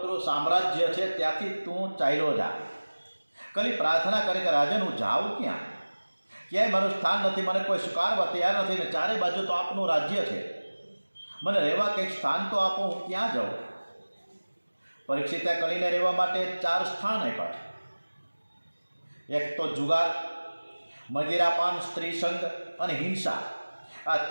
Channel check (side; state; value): both; inverted; correlation -1.00